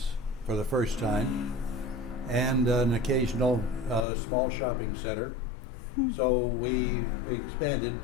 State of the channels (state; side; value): drops out; right; at 4.0 s